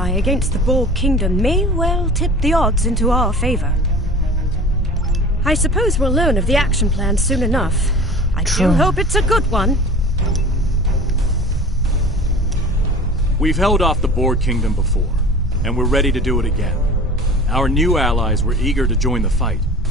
against the Borg Kingdom may well tip the odds into our favor. I suppose we'll learn of the action plan soon enough. I do hope it's a good one. We've held off the Borg Kingdom before, and we're ready to do it again. Our new allies were eager to join the fight,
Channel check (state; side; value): normal; both; correlation 0.37